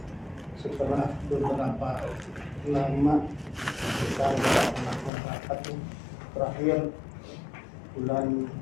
setelah beberapa lama kita melakukan rapat terakhir bulan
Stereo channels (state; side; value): drops out; right; at 5.1 s